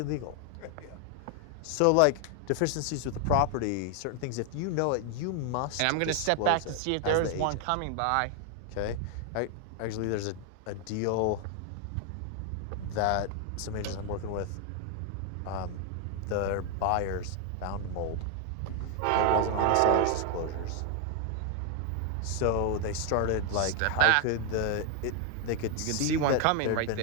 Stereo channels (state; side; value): different; both; correlation 0.00